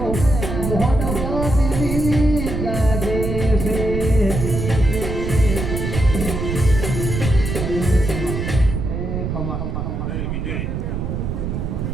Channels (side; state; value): right; noise; rumble, 3 dB below the sound